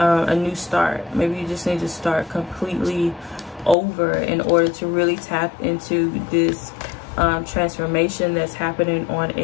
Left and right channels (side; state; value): right; drops out; at 3.8 s